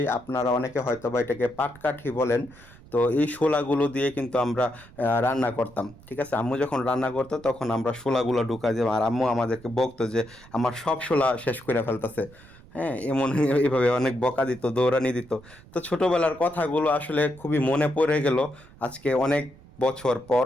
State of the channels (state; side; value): noise; right; rumble, 22 dB below the sound